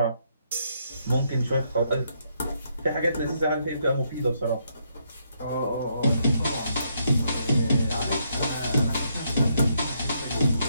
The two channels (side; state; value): both; inverted; correlation -0.75